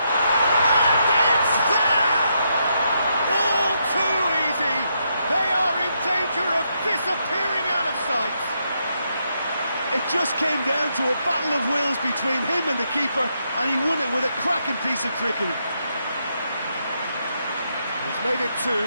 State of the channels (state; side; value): inverted; both; correlation -0.79